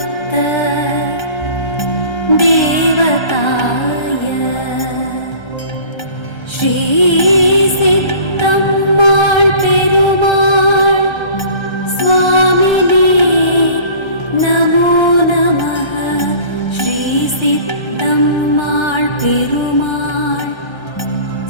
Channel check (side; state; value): right; late; 1.3 ms